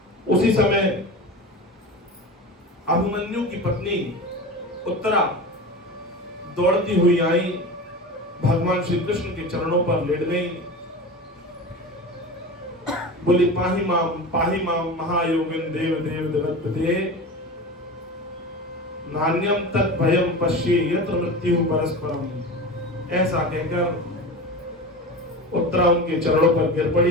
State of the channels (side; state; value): both; normal; correlation 0.30